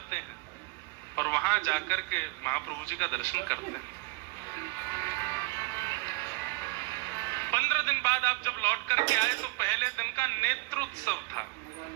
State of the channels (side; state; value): left; quieter; 25.7 dB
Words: हैं और वहां जाकर के महाप्रभु जी का दर्शन करते हैं। 15 दिन बाद आप जब लौट करके आए तो पहले दिन का नेत्रोत्सव था